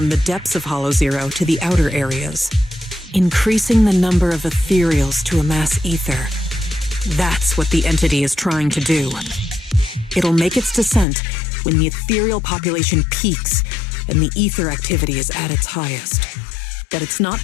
the depths of Hollow Zero to the outer areas. Increasing the number of ethereals to amass ether. That's what the entity is trying to do. It'll make its descent when the ethereal population peaks and the ether activity is at its highest. But it's not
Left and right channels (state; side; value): drops out; right; at 11.1 s